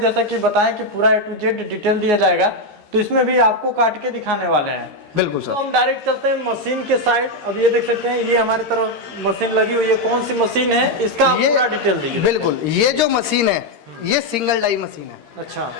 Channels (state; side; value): late; left; 13 ms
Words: कि बताएं कि पूरा A to Z डिटेल दिया जाएगा, तो इसमें भी आपको काट के दिखाने वाले हैं। बिल्कुल सर। तो हम डायरेक्ट चलते हैं मशीन के साइड। अब ये देख सकते हैं, ये हमारी तरफ मशीन लगी हुई है। कौन सी मशीन है, इसका आप पूरा डिटेल दीजिए। बिल्कुल, ये जो मशीन है ये सिंगल डाई मशीन है। अच्छा।